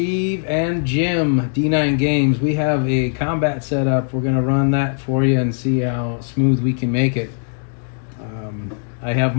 and Jim, D9 Games. We have a combat set up. We're going to run that for you and see how smooth we can make it. I have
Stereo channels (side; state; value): right; silent; 62 dB below the other